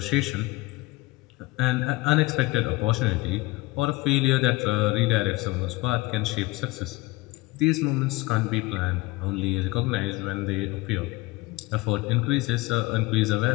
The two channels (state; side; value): quieter; right; 21.7 dB